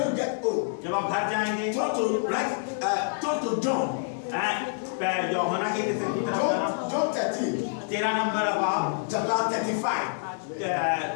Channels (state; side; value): silent; right; digital silence